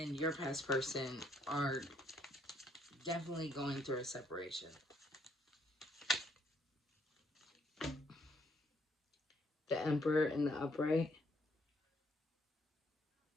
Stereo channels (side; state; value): both; normal; correlation 0.69